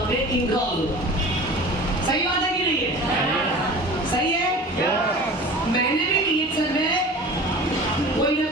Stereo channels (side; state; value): both; normal; correlation 0.39